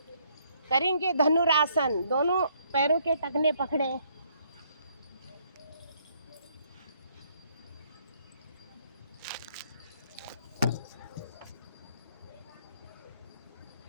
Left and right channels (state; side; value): inverted; both; correlation -0.68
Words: करेंगे धनुरासन, दोनों पैरों के टखने पकड़े।